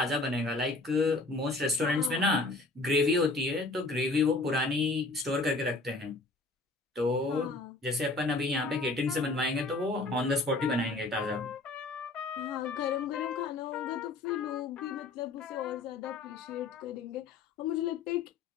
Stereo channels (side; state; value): right; quieter; 3.3 dB